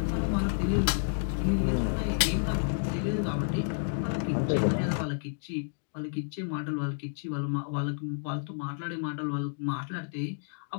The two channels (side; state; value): right; silent; digital silence